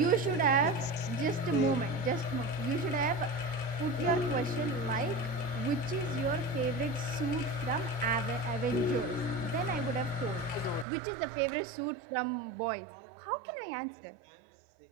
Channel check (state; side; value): drops out; left; at 10.9 s